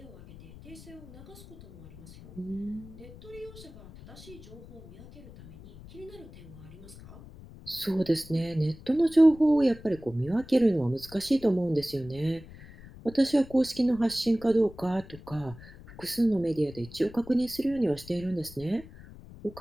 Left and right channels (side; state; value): left; noise; rumble, 18 dB below the sound